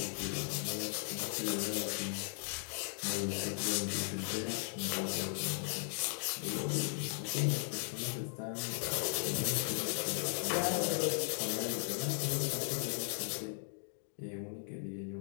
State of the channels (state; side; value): silent; right; digital silence